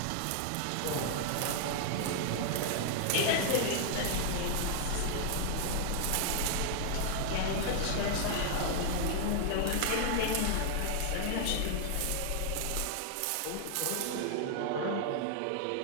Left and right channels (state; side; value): different; both; correlation 0.00